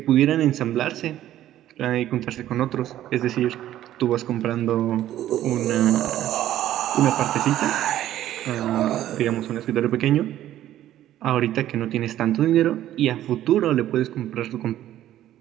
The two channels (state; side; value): quieter; left; 12.8 dB